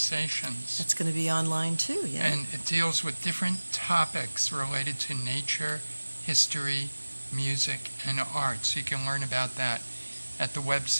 That's going to be online too, yeah. And it deals with different topics related to nature, history, music, and art. So you can learn about that at the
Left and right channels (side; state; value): both; inverted; correlation -1.00